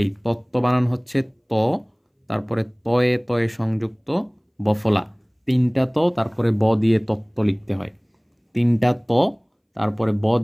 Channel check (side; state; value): both; identical; correlation 1.00